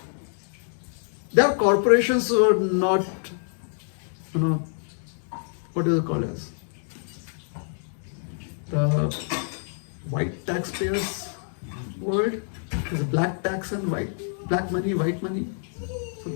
their corporations were not, what is it called as? The white taxpayers world. There's black tax and black money, white money. So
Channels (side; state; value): right; silent; digital silence